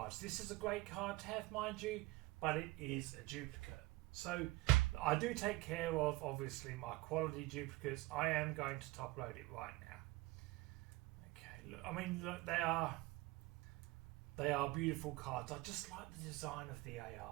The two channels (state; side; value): quieter; left; 20.7 dB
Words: This is a great card to have, mind you, but it is a duplicate. So I do take care of, obviously, my quality duplicates. I am going to top load it right now. Okay, look, I mean, look, they are beautiful cards. I just like the design of the